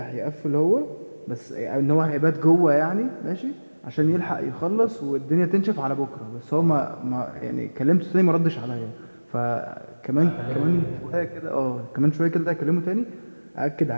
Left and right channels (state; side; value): inverted; both; correlation -1.00